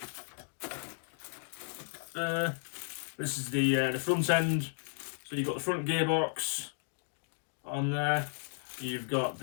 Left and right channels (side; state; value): right; silent; digital silence